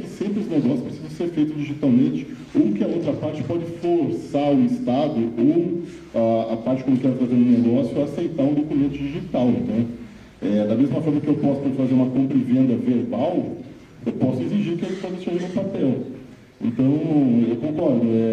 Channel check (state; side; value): identical; both; correlation 1.00